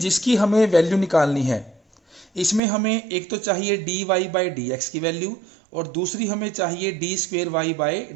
हमें वैल्यू निकालनी है, इसमें हमें एक तो चाहिए d y by d x की वैल्यू, और दूसरी हमें चाहिए d square y by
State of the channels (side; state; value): left; drops out; at 2.6 s